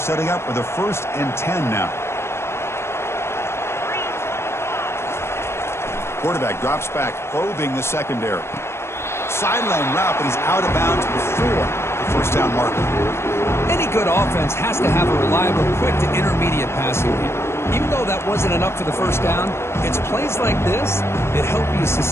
up with a 1st and 10 now. Quarterback drops back, probing the secondary. Sideline route, but he's out of bounds before the first down marker. Any good offense has to have a reliable, quick to intermediate passing game. Even though that wasn't enough for the first down, it's plays like this that help you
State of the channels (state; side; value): late; right; 0.12 ms